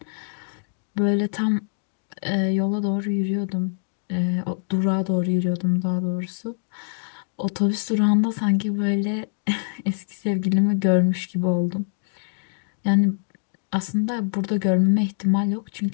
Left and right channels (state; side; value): silent; right; digital silence